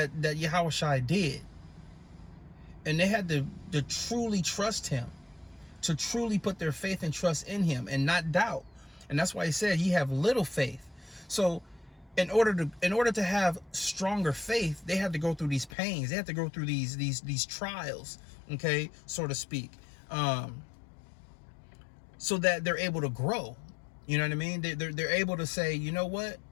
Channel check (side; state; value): right; drops out; at 15.7 s